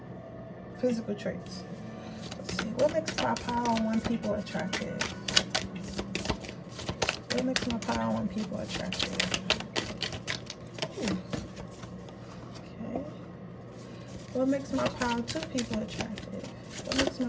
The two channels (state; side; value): identical; both; correlation 1.00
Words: physical traits. Let's see, what makes my power on people attractive? What makes my power on people attractive? Okay. What makes my power to people attractive? What makes